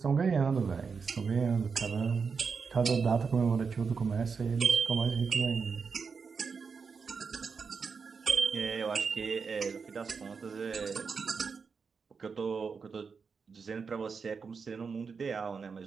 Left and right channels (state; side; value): quieter; left; 5.4 dB